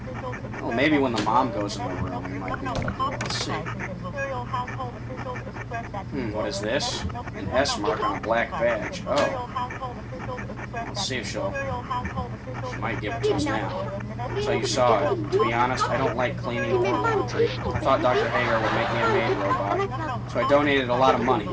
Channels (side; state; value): both; identical; correlation 1.00